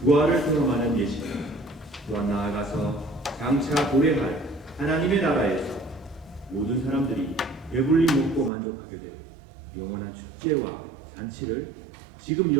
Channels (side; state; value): left; drops out; at 8.5 s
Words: 부활을 경험하는 예식입니다. 또한 나아가서 장차 도래할 하나님의 나라에서 모든 사람들이 배불리 먹고 만족하게 될 영원한 축제와 잔치를 지금